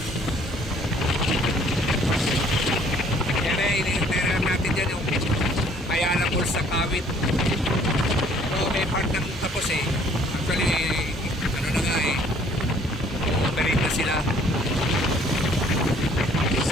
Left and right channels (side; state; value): both; normal; correlation 0.59